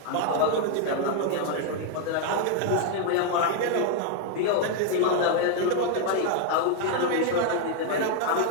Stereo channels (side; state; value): both; different; correlation 0.00